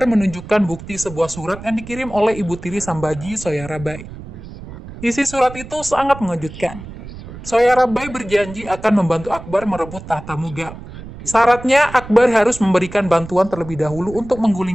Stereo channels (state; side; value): noise; right; rumble, 14 dB below the sound